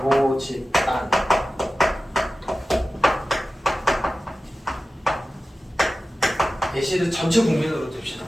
모집단 예시를 전체 국민으로 둡시다.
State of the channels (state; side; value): normal; both; correlation 0.94